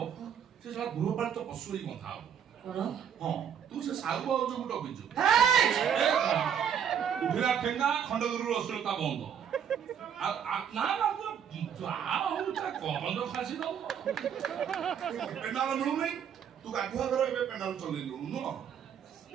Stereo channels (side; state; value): left; quieter; 8.3 dB